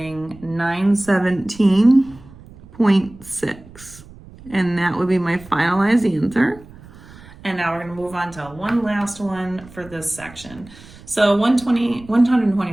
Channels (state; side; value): noise; right; rumble, 21 dB below the sound